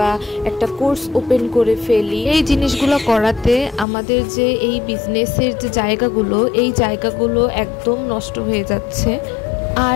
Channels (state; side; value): drops out; right; at 3.9 s